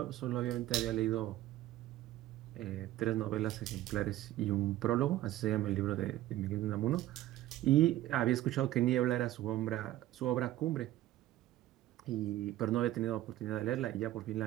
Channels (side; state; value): left; quieter; 14.5 dB